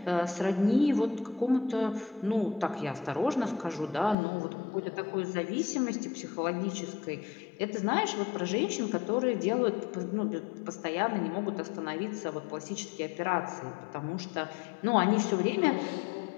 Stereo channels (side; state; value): right; drops out; at 4.2 s